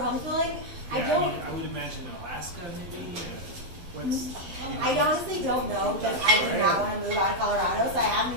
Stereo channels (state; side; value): late; left; 12 ms